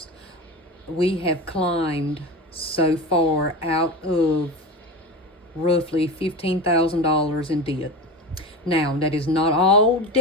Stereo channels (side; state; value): both; normal; correlation 0.26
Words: We have climbed so far out of roughly $15,000 in debt. Now, that is not all